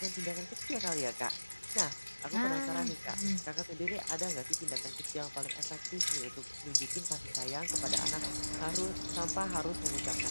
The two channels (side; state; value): both; inverted; correlation -1.00